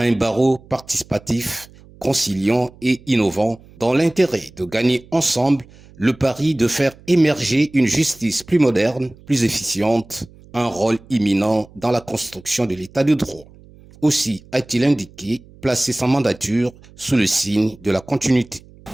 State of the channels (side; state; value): right; noise; hum, 24 dB below the sound